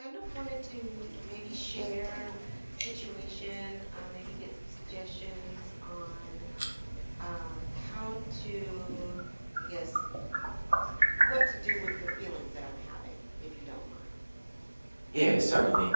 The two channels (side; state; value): both; inverted; correlation -1.00